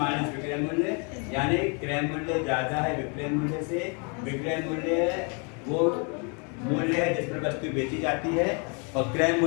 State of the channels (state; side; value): quieter; right; 35.7 dB